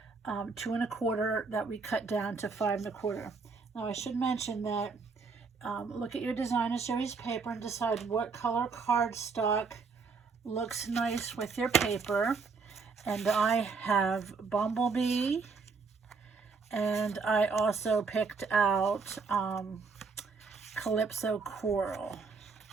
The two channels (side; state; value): left; quieter; 4.8 dB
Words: 2 1/4 that we cut down to 5 1/4. Now I should mention that look at your designer series paper and decide what color cardstock looks nice with your paper. And I have Bumblebee, and I also picked out Calypso Coral.